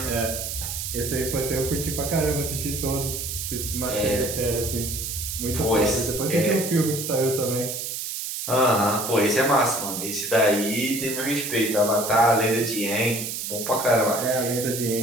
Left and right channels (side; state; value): right; noise; hiss, 5 dB below the sound